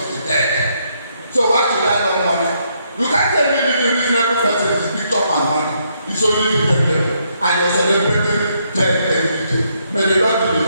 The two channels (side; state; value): both; inverted; correlation -0.74